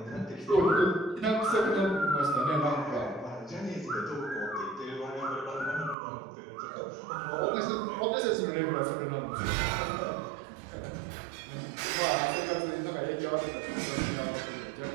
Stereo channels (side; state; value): left; drops out; at 6.0 s